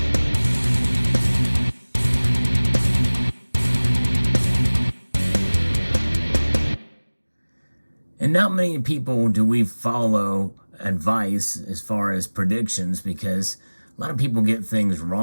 And not many people do we follow advice as far as predictions because a lot of people get things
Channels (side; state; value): both; inverted; correlation -1.00